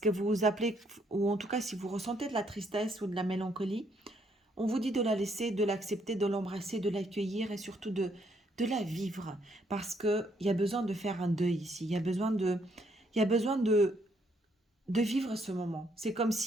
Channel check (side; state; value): both; normal; correlation 0.71